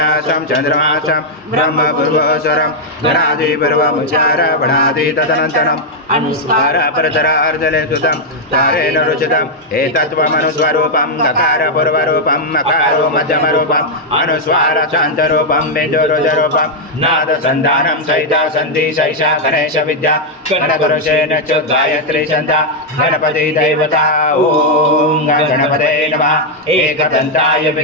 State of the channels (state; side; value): normal; both; correlation -0.02